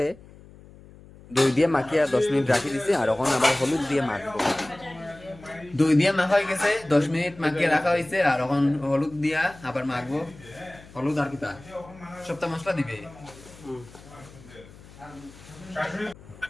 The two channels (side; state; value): left; noise; hum, 21 dB below the sound